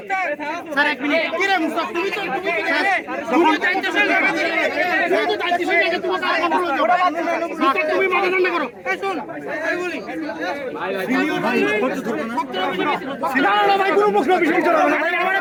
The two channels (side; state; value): both; identical; correlation 1.00